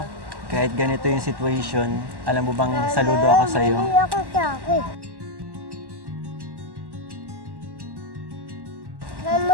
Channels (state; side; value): late; left; 1.1 ms